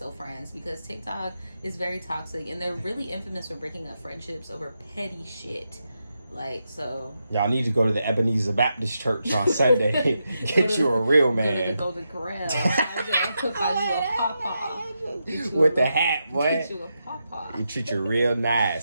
friends, because TikTok is very toxic, and they're really infamous for breaking up friendships over petty shit. Like, so y'all need to go to the Ebenezer Baptist Church on Sunday. Get you a real man. Go to the Golden Corral. I'll cook on you a pawpaw. With the hat, boy. Get you a pawpaw. You treat you real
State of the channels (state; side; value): inverted; both; correlation -0.85